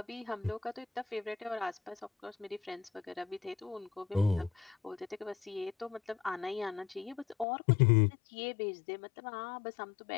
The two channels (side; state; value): right; drops out; at 7.5 s